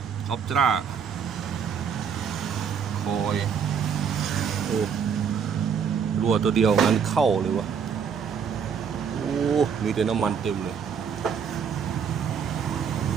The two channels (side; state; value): left; quieter; 6.9 dB